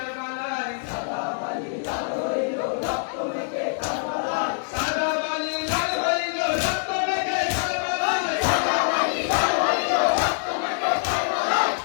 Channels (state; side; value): silent; right; digital silence